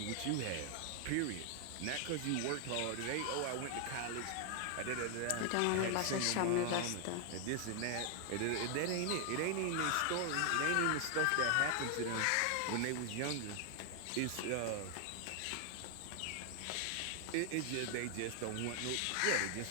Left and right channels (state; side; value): different; both; correlation 0.00